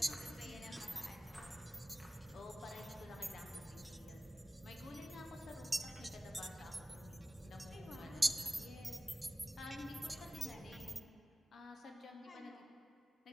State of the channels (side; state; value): both; normal; correlation 0.96